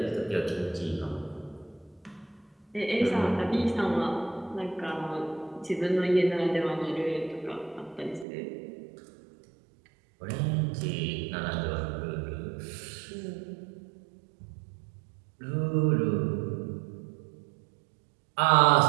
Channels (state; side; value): drops out; left; at 8.2 s